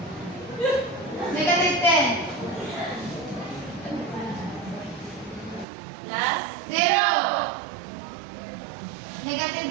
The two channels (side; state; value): left; drops out; at 5.7 s